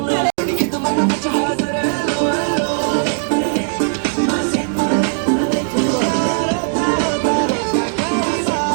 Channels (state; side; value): silent; left; digital silence